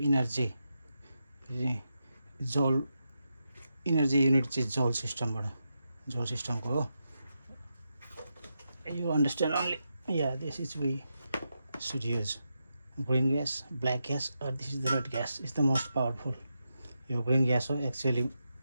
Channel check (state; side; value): inverted; both; correlation -0.86